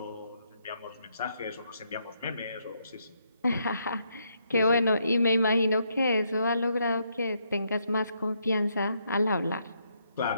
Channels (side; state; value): both; inverted; correlation -0.76